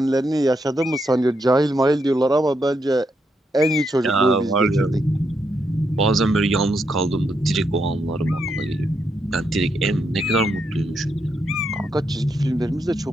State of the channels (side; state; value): both; normal; correlation 0.80